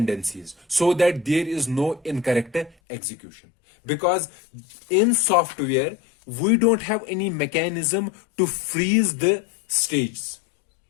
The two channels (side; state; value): right; drops out; at 2.8 s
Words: so that there is no incorrect execution. Because in software, we don't have any mechanism to freeze the stages.